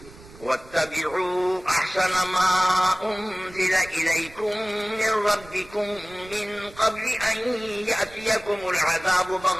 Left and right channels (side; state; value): right; noise; rumble, 20 dB below the sound